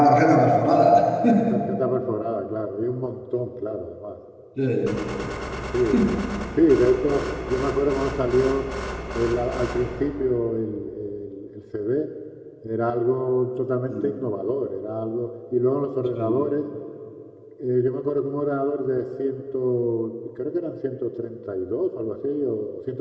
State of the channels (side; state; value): both; identical; correlation 1.00